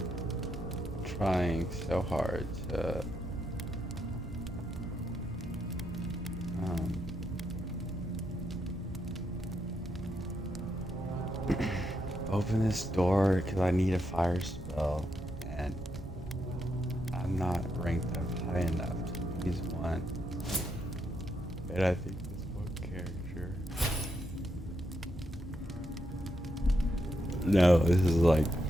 Trying so hard to open this door because I need a fire spell, and I'm not ranked up high enough to use one. And I think this one character. No, this is like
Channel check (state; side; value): normal; both; correlation 0.80